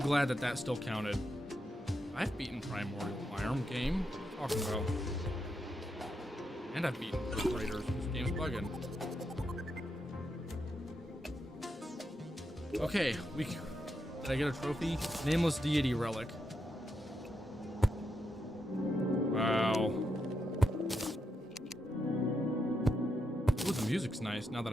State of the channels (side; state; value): both; normal; correlation 0.84